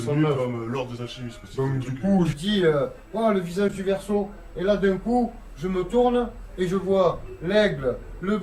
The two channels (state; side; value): identical; both; correlation 1.00